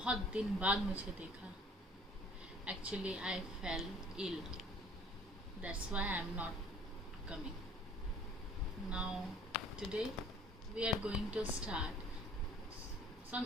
दिन बाद मुझे देखा। Actually I fell ill, that's why I am not coming now. Today we are going to start some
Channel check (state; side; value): normal; both; correlation 0.52